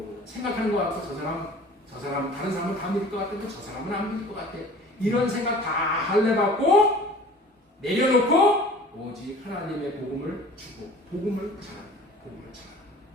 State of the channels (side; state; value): both; normal; correlation 0.45